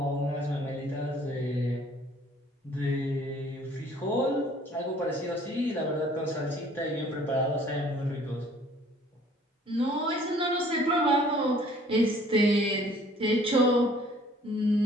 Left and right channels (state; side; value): normal; both; correlation 0.56